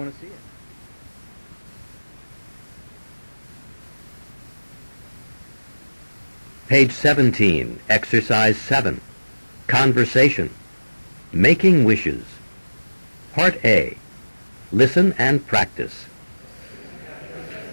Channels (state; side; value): inverted; both; correlation -1.00